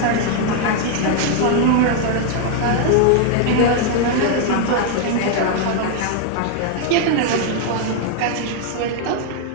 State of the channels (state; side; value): different; both; correlation 0.00